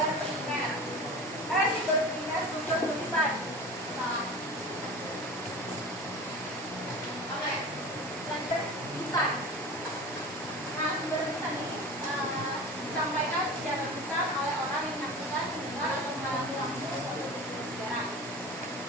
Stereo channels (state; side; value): normal; both; correlation 0.34